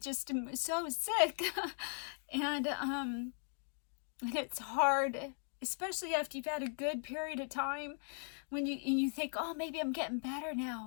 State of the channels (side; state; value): right; silent; 52 dB below the other